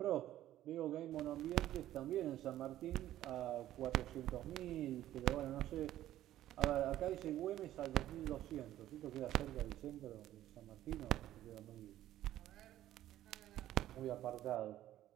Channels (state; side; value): quieter; left; 13.3 dB